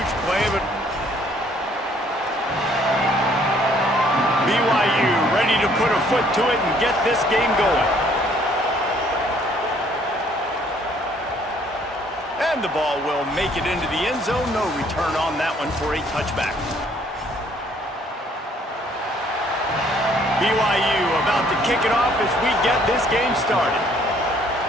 play, but BYU ready to put a foot to it and get this game going. And the ball will make it into the end zone. No return on that one for a touchback. BYU about to kick it off as we get this game started.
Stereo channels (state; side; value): normal; both; correlation 0.62